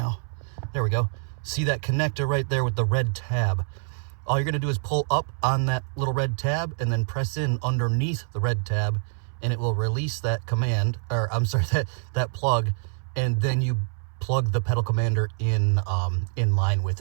There we go. See that connector right there with the red tab? All you're gonna do is pull up on that little red tab and then press in underneath the red tab, and it will release that command, or I'm sorry, that plug, and then you plug the Pedal Commander in line with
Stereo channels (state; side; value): silent; left; 61 dB below the other